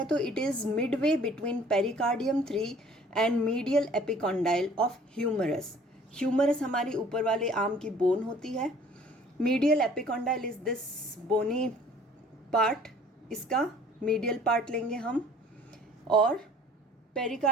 तो it is midway between pericardium 3 and medial epicondyle of humerus. Humerus हमारी ऊपर वाले आर्म की बोन होती है. Medial epicondyle is this bony part. इसका मीडियल पार्ट लेंगे हम. और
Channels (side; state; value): both; normal; correlation 0.52